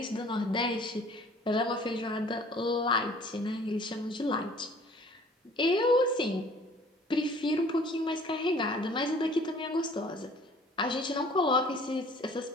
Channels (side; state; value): both; normal; correlation 0.52